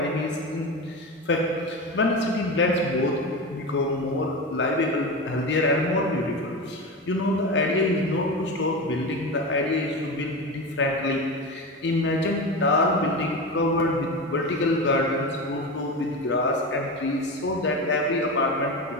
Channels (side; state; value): both; normal; correlation 0.23